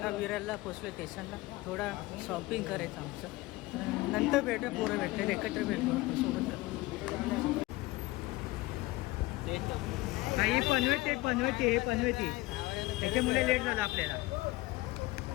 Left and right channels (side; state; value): right; quieter; 20.3 dB